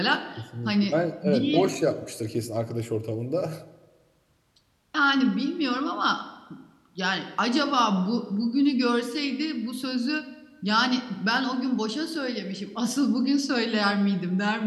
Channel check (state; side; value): identical; both; correlation 1.00